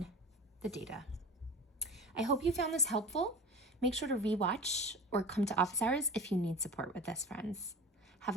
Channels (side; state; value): both; normal; correlation 0.35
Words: the data. I hope you found this helpful. Make sure to rewatch or come to office hours if you need support with this, friends. Have